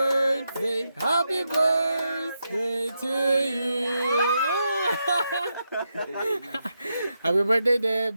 happy birthday to you! Happy birthday, Deb!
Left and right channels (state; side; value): inverted; both; correlation -0.85